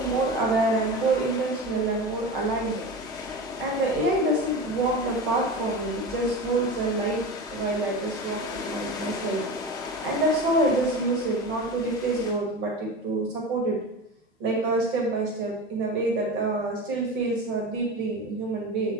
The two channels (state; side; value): normal; both; correlation 0.28